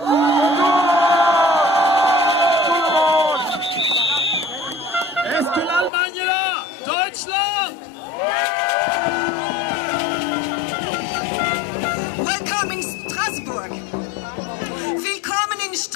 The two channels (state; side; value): drops out; right; at 5.9 s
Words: Est-ce que l'Allemagne est là? Deutschland! Welcome in Strasbourg. Willkommen in